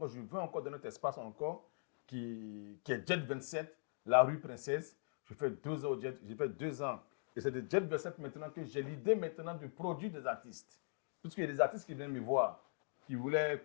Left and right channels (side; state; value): right; silent; digital silence